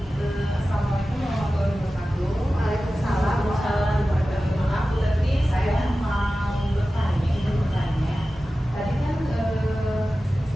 Assalamualaikum warahmatullahi wabarakatuh. Waalaikumsalam. Maaf, tapi saya mau bertanya. Tadi kan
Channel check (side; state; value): both; normal; correlation 0.95